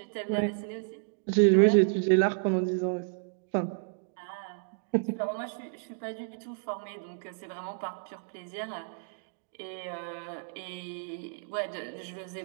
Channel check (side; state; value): left; silent; digital silence